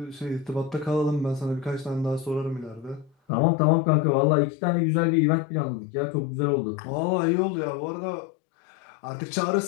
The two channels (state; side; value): drops out; right; at 3.1 s